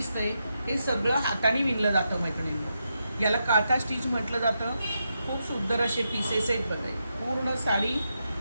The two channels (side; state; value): both; inverted; correlation -0.85